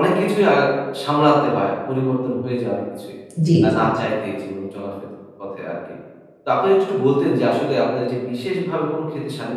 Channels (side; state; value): both; identical; correlation 1.00